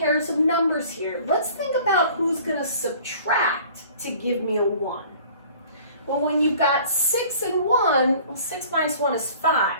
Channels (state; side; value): inverted; both; correlation -0.49